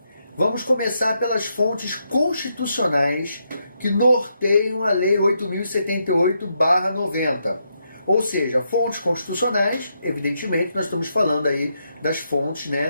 vamos começar pelas fontes constitucionais que norteiam a Lei 8.078/90. Ou seja, fontes constitucionais, evidentemente, nós estamos falando aí das fontes,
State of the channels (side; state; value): both; inverted; correlation -0.80